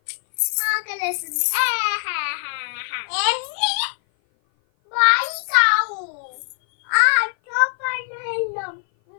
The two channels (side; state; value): right; silent; 57 dB below the other